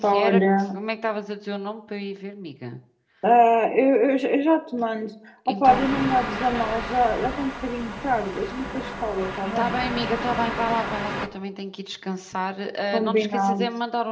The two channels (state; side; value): identical; both; correlation 1.00